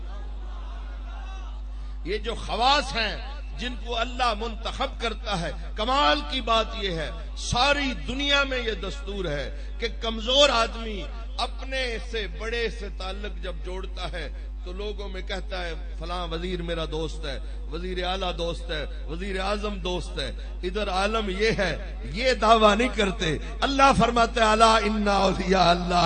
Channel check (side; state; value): both; identical; correlation 1.00